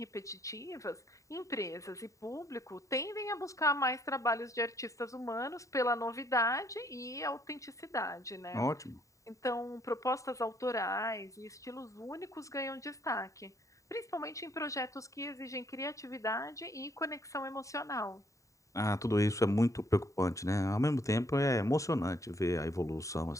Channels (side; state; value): right; late; 0.16 ms